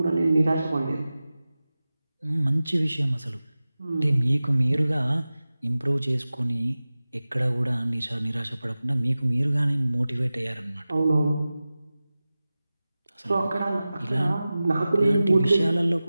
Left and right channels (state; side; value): inverted; both; correlation -0.96